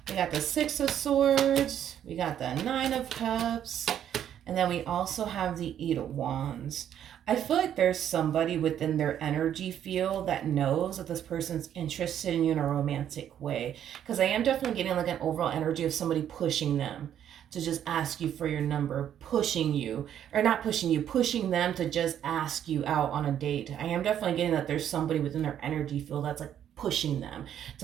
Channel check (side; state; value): left; quieter; 10.1 dB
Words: We got the Six of Swords, we got the Nine of Cups, and then we also have the Eight of Wands. I feel like there's somebody within their energy field that knows that this person's interested in you in a romantic way, because I am definitely getting like an overall energy of somebody pushing them to just ask you for your number, pushing you, or not pushing you, pushing them to just ask you out on a date. I am definitely getting that there's somebody within their energy field that's like pushing them